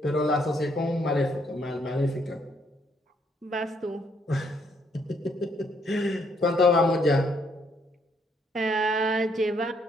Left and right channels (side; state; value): both; normal; correlation 0.71